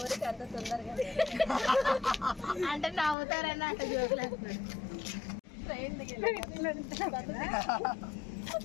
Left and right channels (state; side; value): drops out; right; at 3.2 s